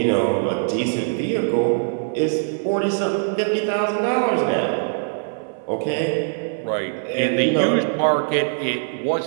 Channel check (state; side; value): silent; left; 63 dB below the other